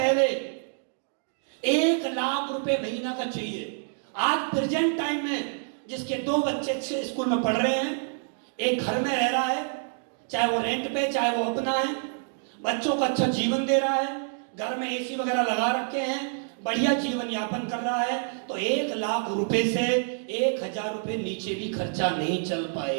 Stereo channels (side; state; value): left; silent; 60 dB below the other